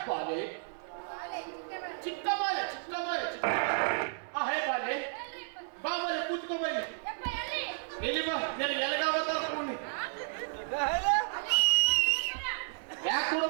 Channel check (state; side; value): silent; left; 56 dB below the other